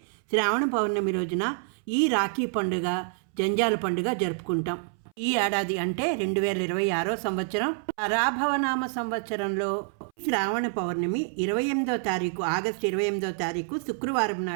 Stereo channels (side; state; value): left; silent; 60 dB below the other